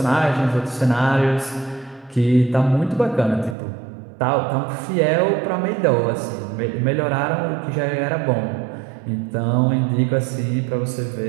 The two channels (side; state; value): left; drops out; at 3.6 s